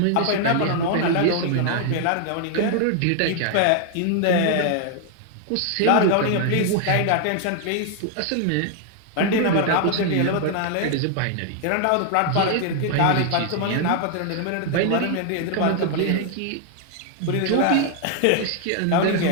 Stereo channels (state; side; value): different; both; correlation 0.00